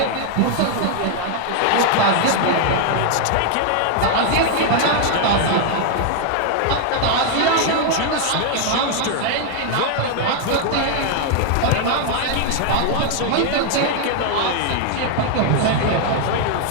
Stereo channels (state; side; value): different; both; correlation 0.00